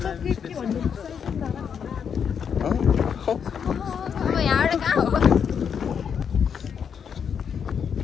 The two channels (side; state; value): right; quieter; 7.3 dB